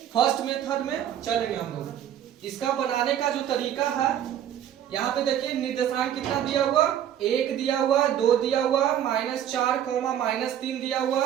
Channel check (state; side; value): quieter; left; 10.4 dB